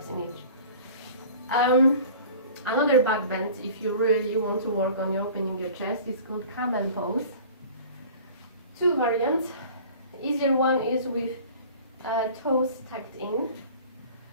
in each. Another back bend, if you really want to work on opening your chest, is called camel pose. 2 variants. Easier one is with toes tucked in,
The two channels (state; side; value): inverted; both; correlation -0.44